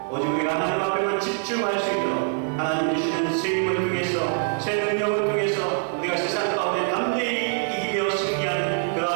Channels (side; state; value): left; silent; 62 dB below the other